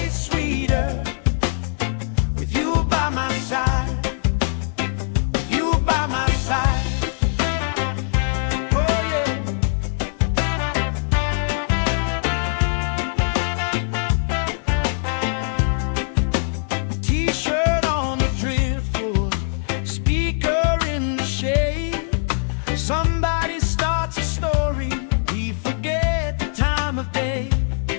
sweeter with you by my side, with you by my side. Oh yeah. T-shirt on the driftwood, speaker in the shade. Somebody starts a story, we forget the time of day.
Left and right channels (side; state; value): right; silent; digital silence